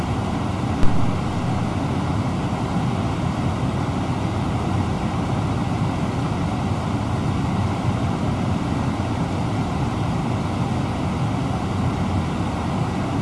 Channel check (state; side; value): identical; both; correlation 1.00